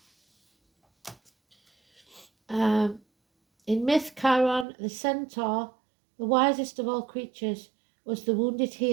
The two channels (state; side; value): drops out; left; at 4.7 s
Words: In myth, Chiron, the centaur, the wisest of all creatures, was the wounded